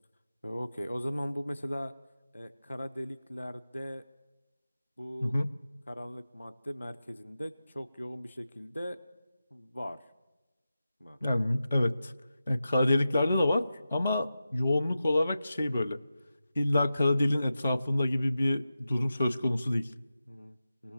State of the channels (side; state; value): both; inverted; correlation -0.92